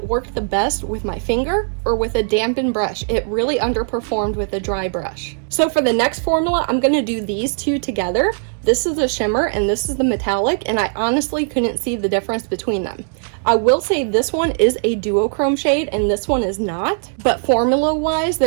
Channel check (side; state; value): left; silent; digital silence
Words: worked the best with my finger or with a dampened brush. It really underperformed with a dry brush. So for the next formula, I'm going to do these two together. This is the shimmer and this is the metallic, and I honestly couldn't see the difference between them. I will say this one is a duochrome shade and this one is not, but formula wise